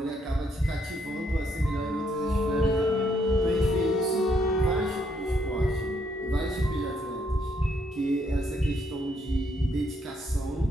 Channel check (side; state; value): both; normal; correlation 0.73